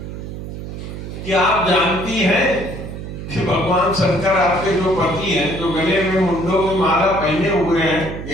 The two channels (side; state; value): right; noise; hum, 9 dB below the sound